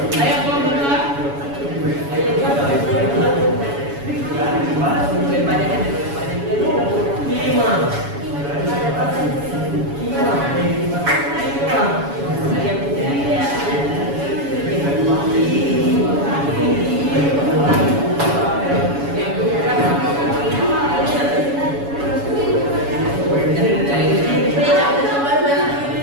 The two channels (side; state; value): left; late; 7.1 ms